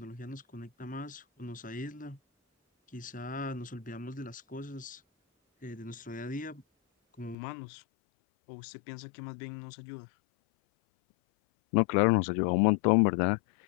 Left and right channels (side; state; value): right; drops out; at 7.4 s